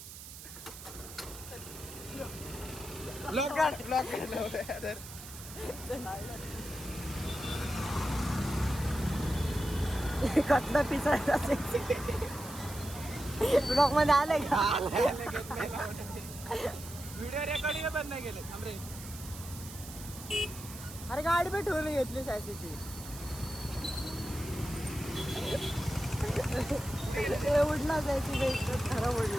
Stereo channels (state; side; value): noise; right; hiss, 13 dB below the sound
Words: ब्लॉक काढ कटला पिसायचा ब्लॉक मध्ये आलंय का? व्हिडिओ रेकॉर्डिंग पण नाही केले अरे गाडी पण ठेवून घेतली सायसीची. उडला जायची खरं